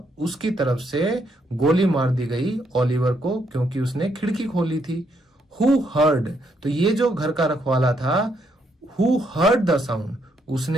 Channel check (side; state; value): both; normal; correlation 0.75